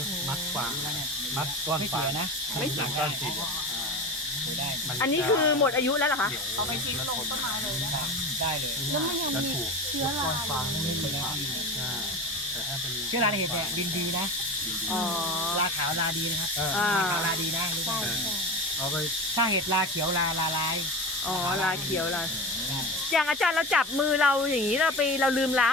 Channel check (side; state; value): both; normal; correlation 0.27